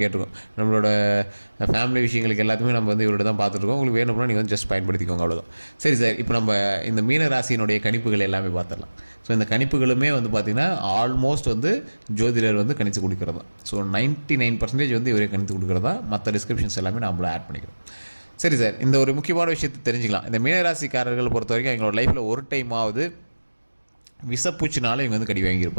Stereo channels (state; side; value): inverted; both; correlation -1.00